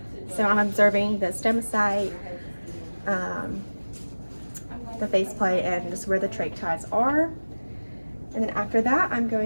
So I'm observing the stomach, the faceplate, and just where the trach ties are. And then after that, I'm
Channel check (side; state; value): both; inverted; correlation -1.00